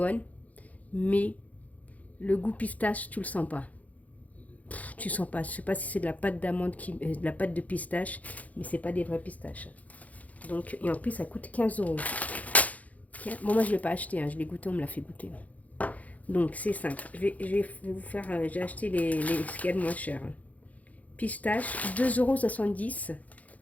mais le goût pistache, tu le sens pas. Tu sens pas, je sais pas si c'est de la pâte d'amande, de la pâte de pistache, mais c'est pas des vrais pistaches. Donc, et en plus, ça coûte 15 euros. Bon, moi je l'ai pas acheté, hein, je l'ai goûté, on me l'a fait goûter. Donc, c'est simple. Je vais vous faire, j'ai acheté ce qu'il y a de moins cher. Pistache, 2,70 €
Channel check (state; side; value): late; right; 0.073 ms